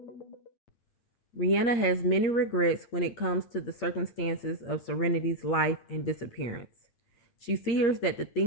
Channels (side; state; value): right; late; 8.7 ms